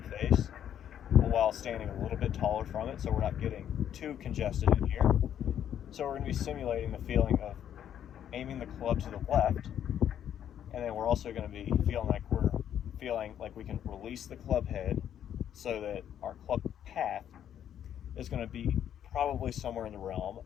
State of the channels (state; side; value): quieter; right; 9.9 dB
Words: face, while standing a little bit taller from it, so we're not getting too congested in here. So we're going to be simulating the feeling of aiming the club to the left, and then we're also going to be feeling like we can release the club head, so that our club path is going to be probably somewhere in the realm